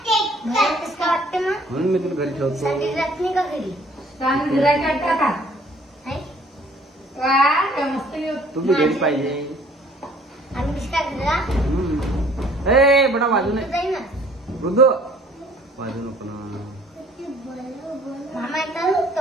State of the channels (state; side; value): normal; both; correlation 0.57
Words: मला कसं काय वाटते मग? म्हणून मी तुला घरी ठेवतो. संडे रात नाही का घरी? चांगलं गिरायक काढता का? आहे? वा काय मस्त तुम्ही घरी पाहिजे. आणि कसं काय घरा? ए बेटा वाजू नये. जाईल ना. मृदू वाजू नको ना. मामा येतात